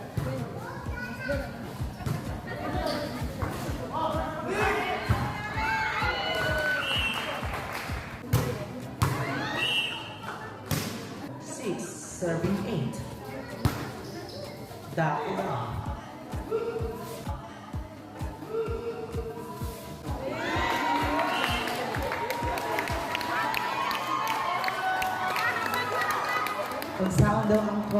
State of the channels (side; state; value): both; identical; correlation 1.00